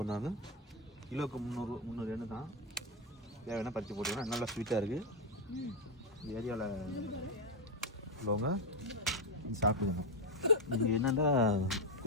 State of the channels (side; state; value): both; normal; correlation 0.06